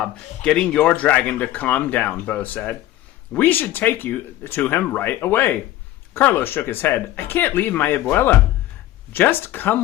getting your dragon to calm down, Bo said. We should take you to him right away. Carlos shook his head. I can't leave my abuela. Just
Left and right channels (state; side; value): quieter; right; 14.5 dB